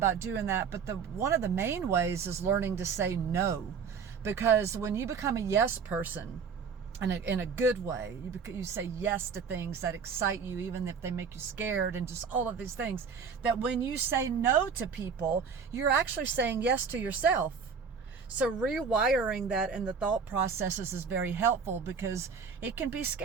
doing that, but one of the main ways is learning to say no. Because when you become a yes person, in a good way, you say yes to things that excite you, even if they make you scared, and just all of these things, that when you say no to people, you're actually saying yes to yourself. So rewiring that in the thought processes is very helpful, because it can be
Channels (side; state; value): left; quieter; 6.0 dB